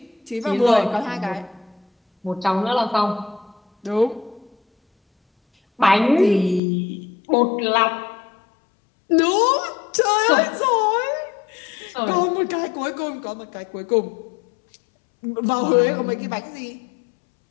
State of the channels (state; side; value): drops out; right; at 6.6 s